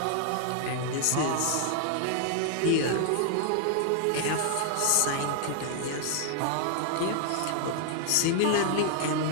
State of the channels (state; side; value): different; both; correlation 0.00